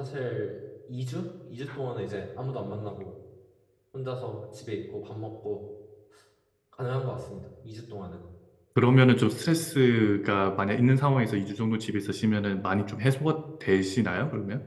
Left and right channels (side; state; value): both; identical; correlation 1.00